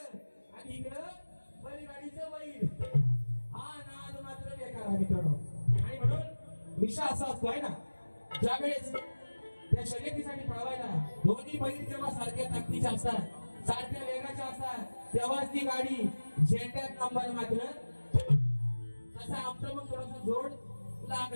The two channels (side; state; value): both; inverted; correlation -1.00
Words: आणि इकडं बैलगाडीचं बैल, हा नाद मात्र बेकार आहे मित्रांनो. आणि म्हणून विषय असा असतो आहे ना, ज्यावेळेस त्या शर्यतीसाठी पळवायला दोन्ही बैल जेव्हा सारख्या ताकदीच्या असतात, सारख्या वेगाच्या असतात, तेव्हाच ती गाडी झेंड्यात नंबर मात्र तसा आमचं मग थोडासा जोड